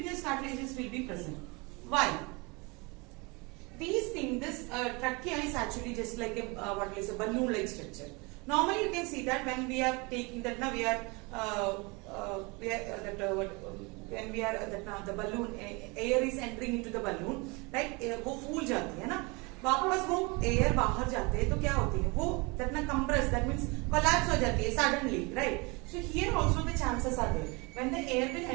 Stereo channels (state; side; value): quieter; left; 27.7 dB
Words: cartilages will be present. Why? These things, this trachea is actually just like a balloon-like structure. Normally, you can see that when we are taking that, now when we are the balloon, air is entering into the balloon, right? वो फूल जाती है ना, वापस वो air बाहर जाते हैं तो क्या होती है? वो that ना compress, that means collapse हो जाती है suddenly, right? So here also the chances are there. When the air will